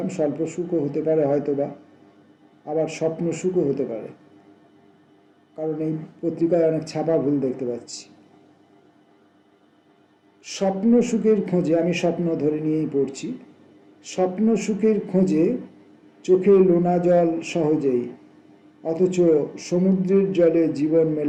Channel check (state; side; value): identical; both; correlation 1.00